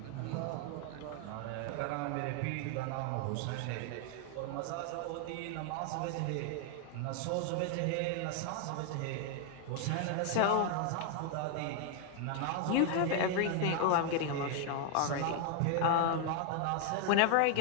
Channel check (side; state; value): both; different; correlation 0.00